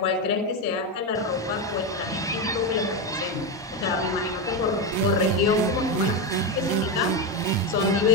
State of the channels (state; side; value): normal; both; correlation 0.11